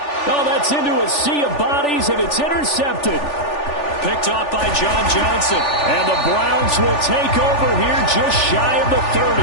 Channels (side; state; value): right; late; 3.4 ms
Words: Oh, that's into a sea of bodies, and it's intercepted. Picked off by John Johnson. And the Browns will take over here just shy of the 30.